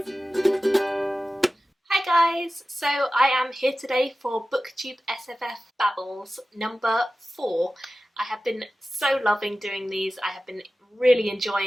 Hi guys, so I am here today for BooktubeSFF Babbles number 4. I have been so loving doing these. I have been really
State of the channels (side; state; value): both; normal; correlation 0.95